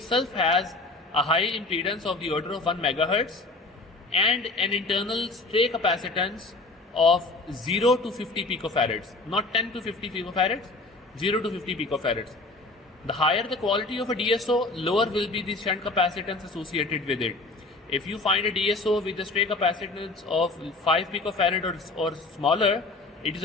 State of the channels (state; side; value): quieter; right; 3.2 dB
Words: has a high impedance of the order of 1 megahertz and an internal stray capacitance of 0 to 50 picofarads, not 10 to 50 picofarads, 0 to 50 picofarads. The higher the quality of a DSO, lower will be the shunt capacitance associated with it. If you find a DSO with a stray capacitance of 5 picofarad or smaller, it is